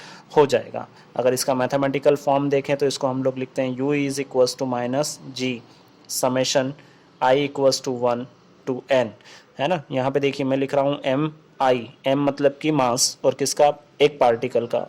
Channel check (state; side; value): identical; both; correlation 1.00